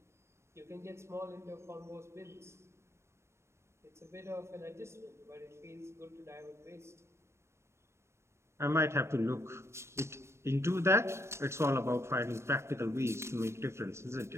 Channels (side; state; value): left; late; 0.13 ms